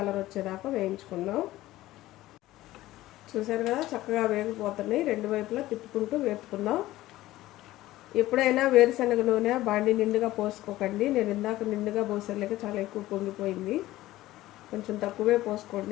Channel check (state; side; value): quieter; right; 16.2 dB